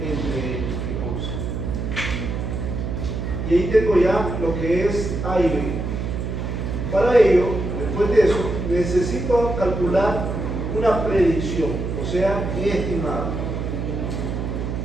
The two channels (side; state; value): right; noise; hum, 3 dB below the sound